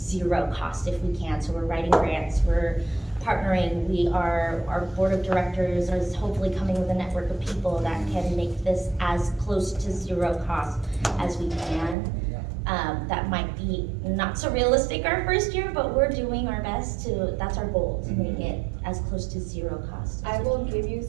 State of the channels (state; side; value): drops out; left; at 12.0 s